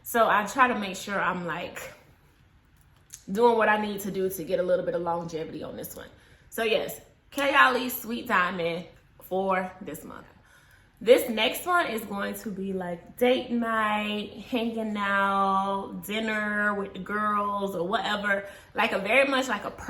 So I try to make sure I'm like doing what I need to do to get a little bit of longevity on this one. So yes, Kayali Sweet Diamond for this month. This next one is going to be like date night, hanging out, dinner with the girls or whatever. Like a very much like a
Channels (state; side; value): identical; both; correlation 1.00